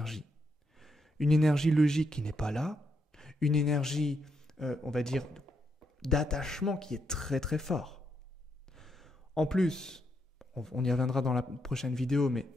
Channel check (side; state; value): both; normal; correlation 0.79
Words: Une énergie logique qui n'est pas là, une énergie, on va dire, d'attachement qui est très très fort. En plus, on y reviendra dans la prochaine vidéo, mais